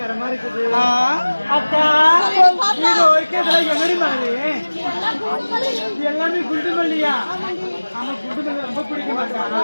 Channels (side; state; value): both; inverted; correlation -1.00